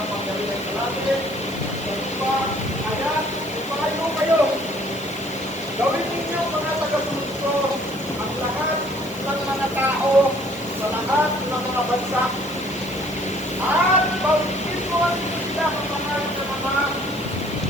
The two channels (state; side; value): noise; left; hiss, 22 dB below the sound